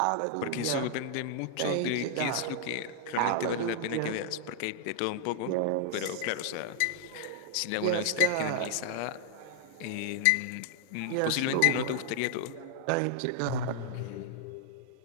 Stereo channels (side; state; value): both; different; correlation -0.01